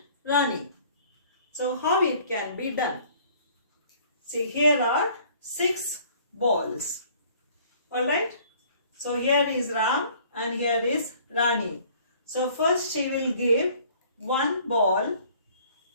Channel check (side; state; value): both; inverted; correlation -0.55